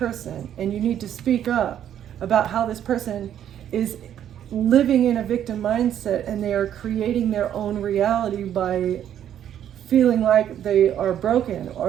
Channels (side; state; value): left; quieter; 10.2 dB